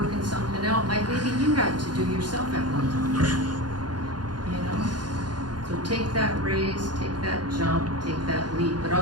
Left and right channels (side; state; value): left; late; 0.70 ms